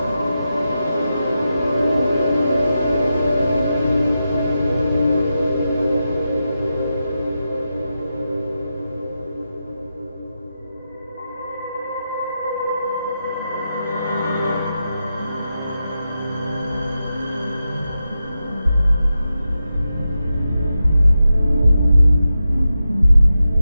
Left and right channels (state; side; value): inverted; both; correlation -0.89